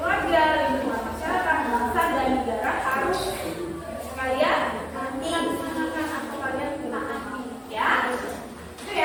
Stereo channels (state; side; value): identical; both; correlation 1.00